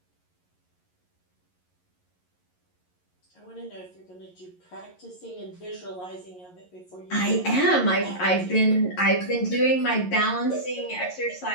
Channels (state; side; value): late; right; 11 ms